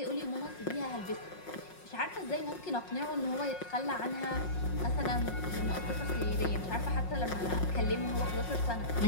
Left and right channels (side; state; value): right; late; 5.5 ms